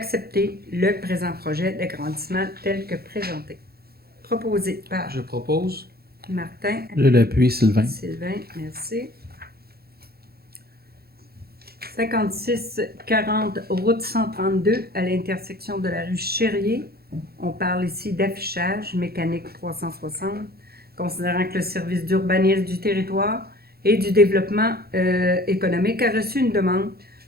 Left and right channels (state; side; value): late; left; 0.45 ms